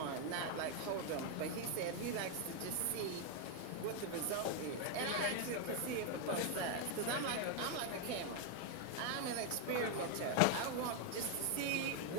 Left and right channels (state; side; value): different; both; correlation 0.01